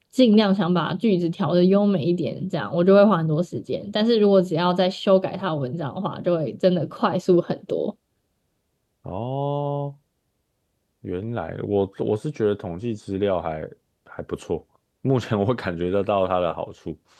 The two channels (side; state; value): both; identical; correlation 1.00